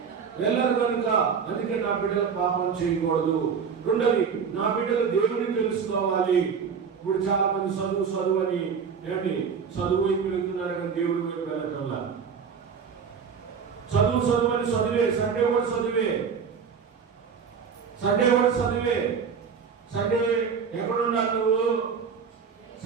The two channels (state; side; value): quieter; left; 6.4 dB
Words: వెళ్ళరు కనుక, అందుకే నా బిడ్డలు పాపం చేయకూడదు. రెండోది, నా బిడ్డలు దేవుని తెలుసుకోవాలి. ఇప్పుడు చాలా మంది చదువు అని ఏంటి చదువు వైపు వెళ్తున్నారు కానీ దేవుడి వైపు వెళ్ళటంలా. చదువు అని చదివే, సండే కూడా చదివే, సండే ఎక్కడుండాలి నువ్వు?